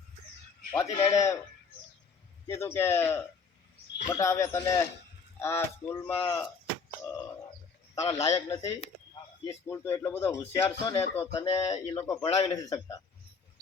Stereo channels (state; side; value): quieter; right; 5.2 dB